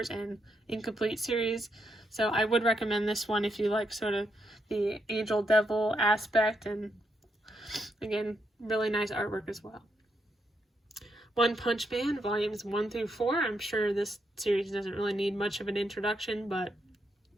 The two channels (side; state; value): both; normal; correlation 0.80